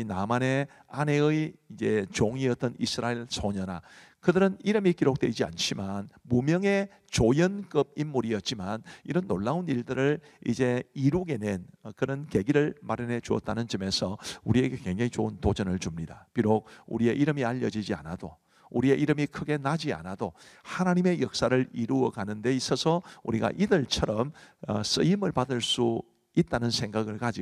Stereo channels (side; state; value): both; identical; correlation 1.00